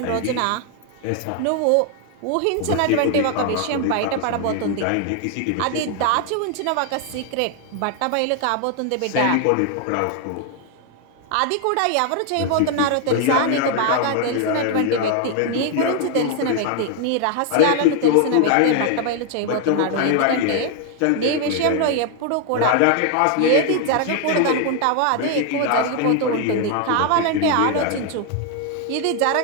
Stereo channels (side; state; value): both; different; correlation 0.00